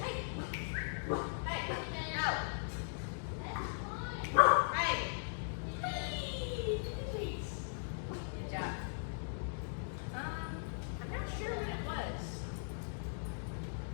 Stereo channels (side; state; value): right; silent; digital silence